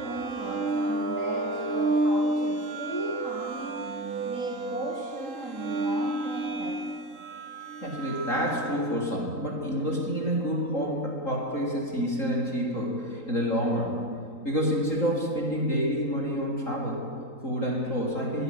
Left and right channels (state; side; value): late; right; 3.8 ms